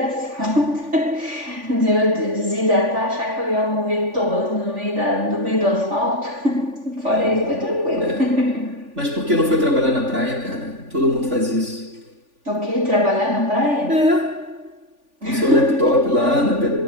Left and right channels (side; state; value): left; late; 3.5 ms